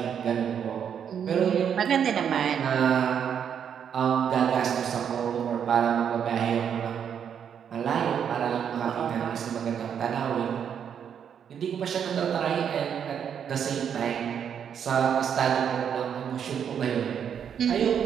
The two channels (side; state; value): left; quieter; 8.1 dB